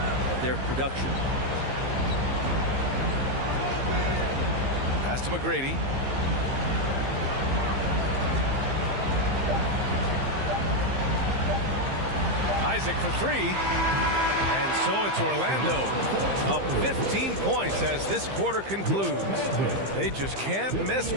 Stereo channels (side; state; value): left; late; 15 ms